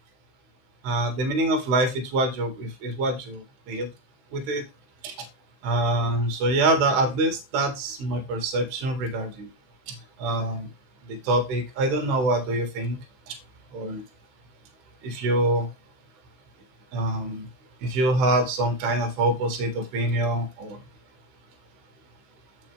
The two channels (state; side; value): late; left; 16 ms